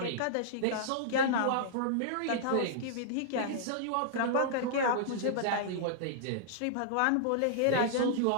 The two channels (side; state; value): both; different; correlation -0.01